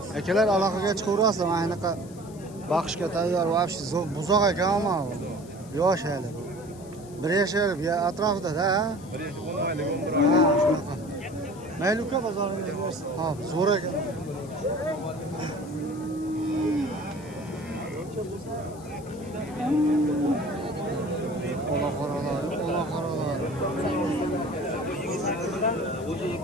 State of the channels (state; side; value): noise; left; hiss, 22 dB below the sound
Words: akalar aloqaga chiqaverasizlar. Mana anaqa baxshga tayyor вообще buzoq ekan ama yosh hali. Bir yashar atrofida-da. 10 oylik umr. Ha, shunaqa. Mayli uka bozoringiz bersin. Ha, zo'r ekan. Ola qaralar.